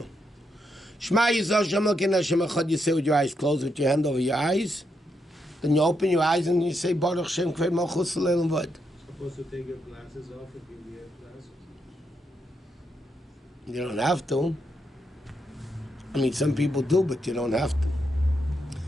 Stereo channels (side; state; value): both; normal; correlation 0.81